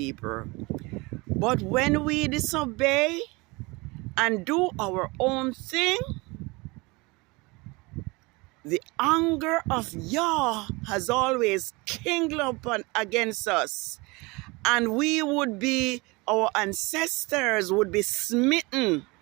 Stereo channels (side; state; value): left; quieter; 25.1 dB